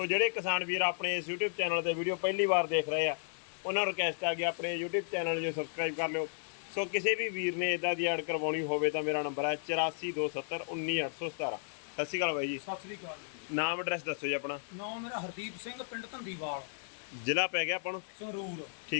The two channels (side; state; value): right; silent; digital silence